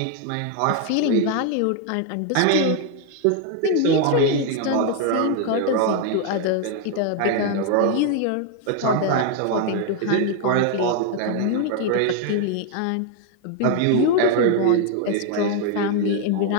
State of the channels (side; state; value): both; different; correlation 0.01